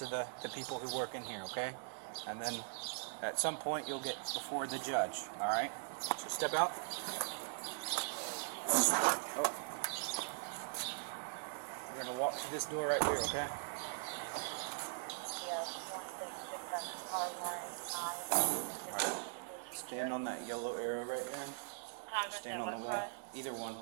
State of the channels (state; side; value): silent; left; digital silence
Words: the people who work in here, okay? And then at some point, you'll get before the judge, alright? So step out. Oh. We're going to walk to this door right here, okay? Stand on that yellow arrow right there. Stand on the wall. Either one.